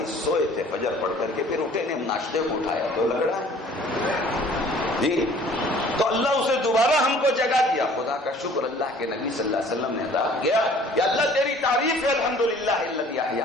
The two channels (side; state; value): both; normal; correlation 0.52